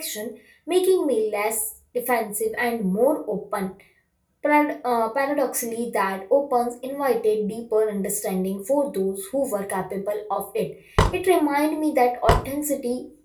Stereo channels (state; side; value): identical; both; correlation 1.00